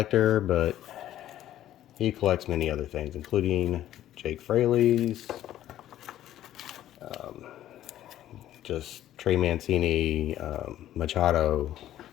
but he collects many other things, including Jake Fraley's, just Trey Mancini, Machado.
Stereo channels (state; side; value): quieter; right; 12.6 dB